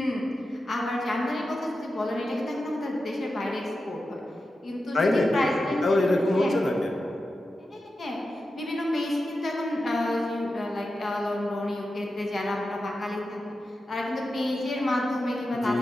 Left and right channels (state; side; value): normal; both; correlation 0.91